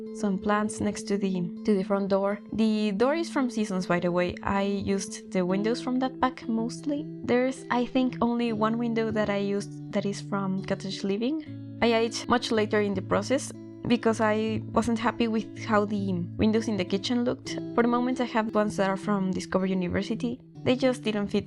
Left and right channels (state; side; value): identical; both; correlation 1.00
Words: some plants next to the front door. The door is from Seasons, by the way. I used the windows from that pack mostly. There's, I think, only one window that I used that is from Cottage Living. I added much later in the process because I wasn't happy with how the windows in the kitchen looked. For the moment I have ones that are from Discover University. They just didn't fit